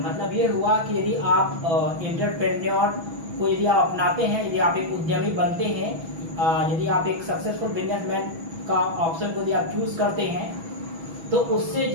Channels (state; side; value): late; left; 6.1 ms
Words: मतलब ये हुआ कि यदि आप एंटरप्रेन्योर को यदि आप अपनाते हैं, यदि आप एक उद्यमी बनते हैं, यदि आप एक सक्सेसफुल बिजनेसमैन का ऑप्शन को यदि आप चूज करते हैं तो उससे